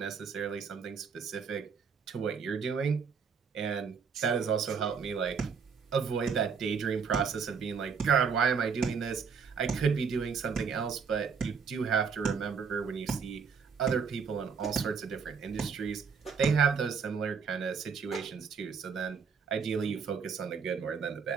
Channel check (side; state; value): left; quieter; 6.0 dB